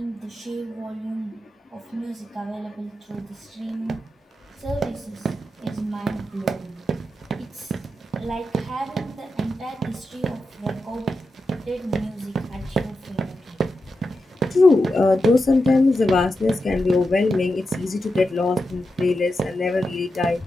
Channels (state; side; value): normal; both; correlation 0.89